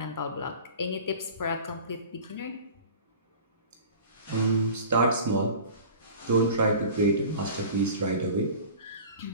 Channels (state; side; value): inverted; both; correlation -0.40